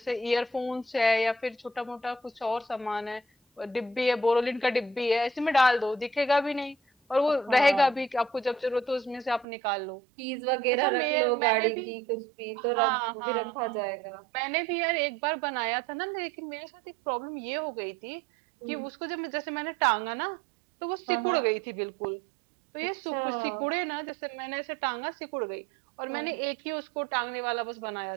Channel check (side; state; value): left; drops out; at 9.5 s